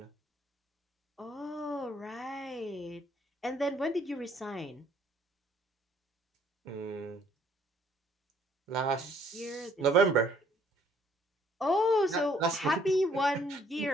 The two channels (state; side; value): normal; both; correlation 0.63